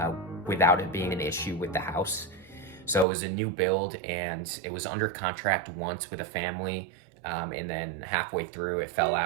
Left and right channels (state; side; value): drops out; left; at 3.1 s